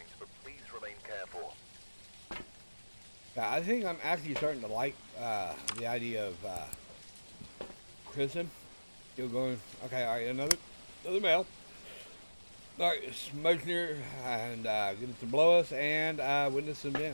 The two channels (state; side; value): inverted; both; correlation -1.00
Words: but please remain careful. Yeah, I think I'm actually starting to like the idea of prison. Still going. Okay, all right, another mail. All right, smoke near and get it to blow us and witness an